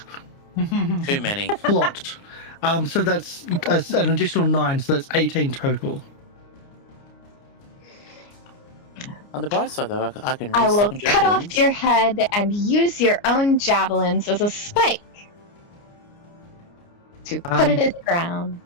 Too many. Plot. So that's an additional 9, so that's 18 total. On the bright side, though, I can. I will resummon cut off javelins. your head and use your own javelins as a spike to put it in the ground.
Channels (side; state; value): right; late; 29 ms